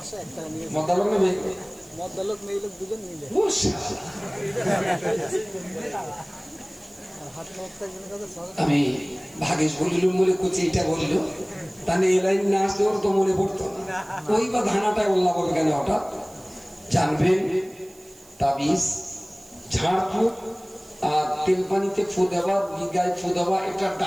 টাকা নিয়েছে। মদ্দালোক না মেয়ে? মদ্দালোক মেয়ে লোক দুজন মিলে। আমি ভাগেশ বলিলুম বলে কুচি এটা বললো, তাহলে এই লাইন না আসলে ওর তো মনে পড়তো না। ওই বা ধানাটায় উল্লাহ বলবে কেন হঠাৎ? জানবেন তাবিজ ঝাড়ফুঁক আর তেল পানিতে ফু দেওয়া, গায়ে ফু দেওয়া, এটা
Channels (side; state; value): right; noise; hiss, 25 dB below the sound